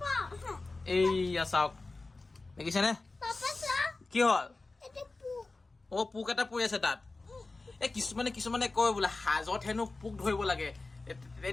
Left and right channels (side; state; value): right; quieter; 3.4 dB